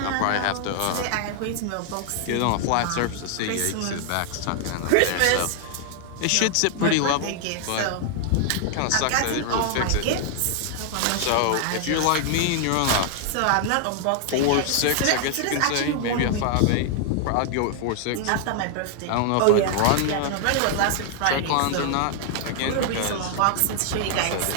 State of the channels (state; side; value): different; both; correlation 0.00